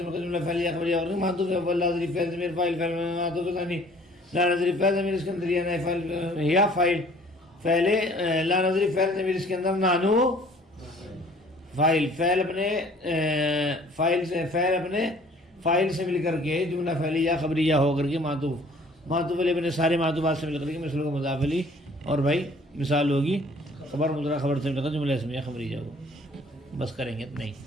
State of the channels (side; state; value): both; normal; correlation 0.54